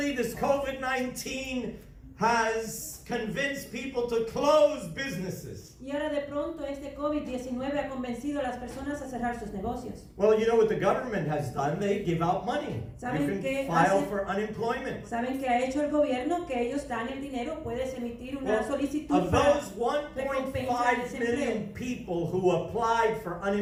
this COVID-19 has convinced people to close businesses. Y ahora de pronto este COVID-19 ha convencido a las personas a cerrar sus negocios. Well, you know what the government has done? They give out money. ¿Saben You qué can file hace? for unemployment. ¿Saben qué ha hecho el gobierno? Que ellos dan el dinero, puedes emitir una Well, solicitud of para those recompensar 1.5 desempleo. million people who applied for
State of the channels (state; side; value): identical; both; correlation 1.00